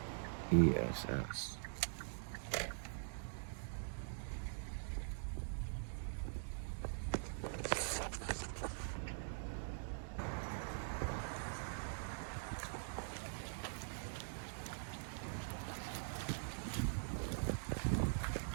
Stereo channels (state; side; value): silent; left; digital silence